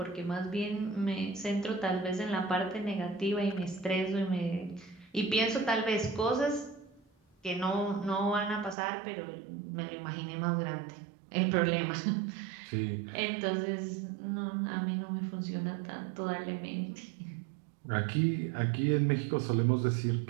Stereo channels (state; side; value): drops out; left; at 8.8 s